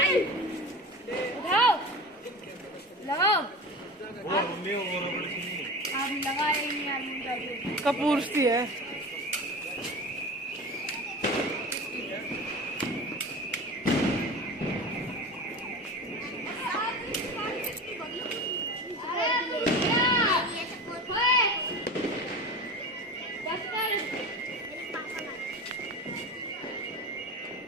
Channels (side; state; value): both; normal; correlation 0.31